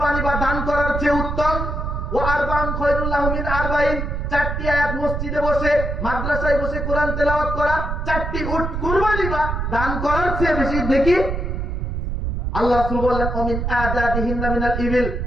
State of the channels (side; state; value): right; noise; rumble, 3 dB below the sound